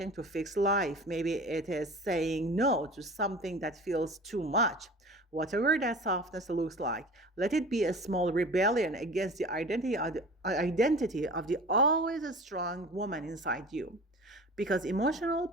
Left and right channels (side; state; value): both; normal; correlation 0.39